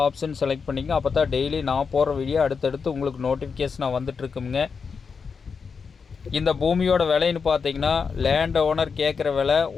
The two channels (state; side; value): quieter; right; 5.6 dB